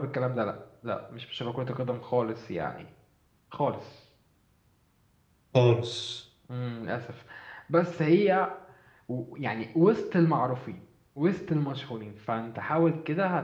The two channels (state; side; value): identical; both; correlation 1.00